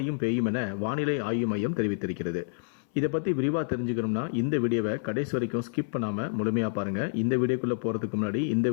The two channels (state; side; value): silent; right; 59 dB below the other